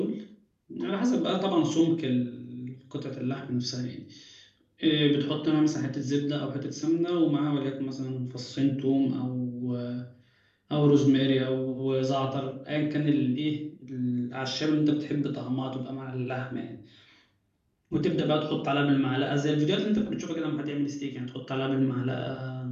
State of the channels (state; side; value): identical; both; correlation 1.00